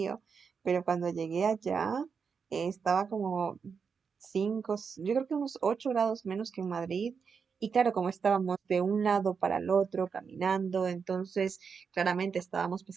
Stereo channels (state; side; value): quieter; left; 5.9 dB